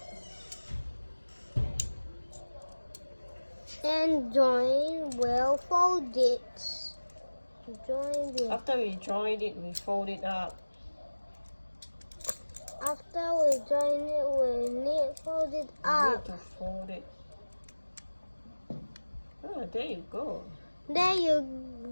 And join well folded. Join it. After we joined it, we fold it up. After we join it, we need fold it We up. need to fold it. Oh, there you go. There you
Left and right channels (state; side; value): inverted; both; correlation -1.00